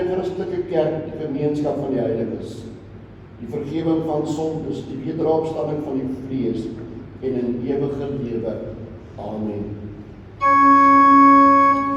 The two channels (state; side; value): identical; both; correlation 1.00